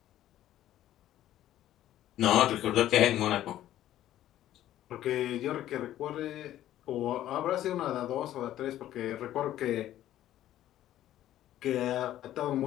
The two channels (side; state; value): right; quieter; 12.9 dB